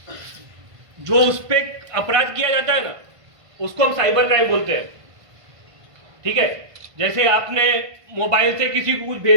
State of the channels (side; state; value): left; late; 1.5 ms